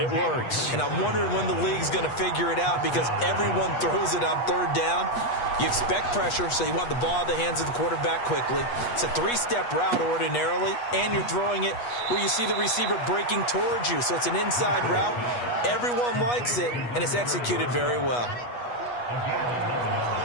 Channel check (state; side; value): late; right; 8.3 ms